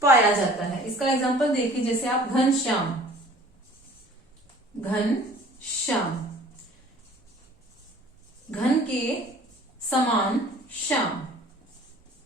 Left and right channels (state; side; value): normal; both; correlation 0.50